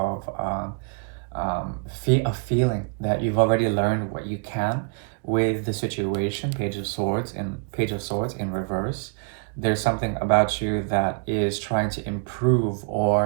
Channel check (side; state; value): left; quieter; 35.3 dB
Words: a feeling that you've already learned what you can with the situation. Page of Swords in reverse. There's something about you that is trying to improve